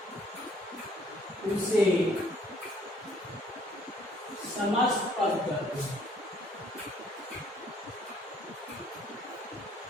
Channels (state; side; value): normal; both; correlation 0.62